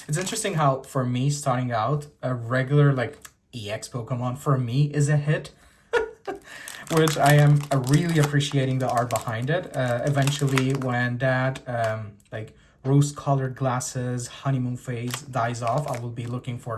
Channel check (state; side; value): identical; both; correlation 1.00